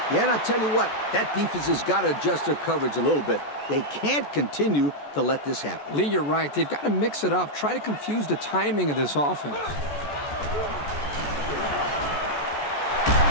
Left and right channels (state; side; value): late; right; 14 ms